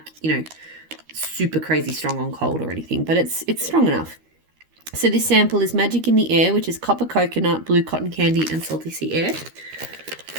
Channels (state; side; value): late; left; 13 ms